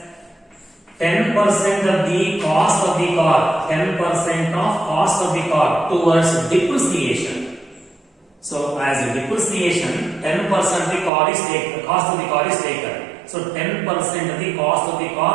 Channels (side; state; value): left; drops out; at 11.1 s